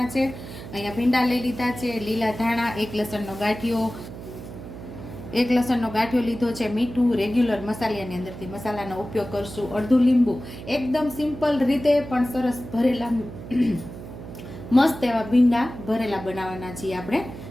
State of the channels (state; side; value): noise; right; hum, 12 dB below the sound